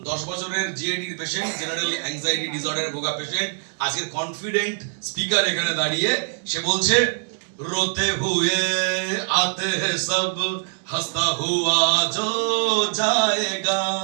10 বছরের জিএডির পেশেন্ট, জেনারেল অ্যাংজাইটি ডিসঅর্ডারে ভোগা পেশেন্ট, আজকের কনফিডেন্ট স্পিকার এখানে দাঁড়িয়ে সে বলছে, रोते हुए आते हैं सब, हंसता हुआ जो जाएगा।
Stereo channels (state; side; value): silent; left; digital silence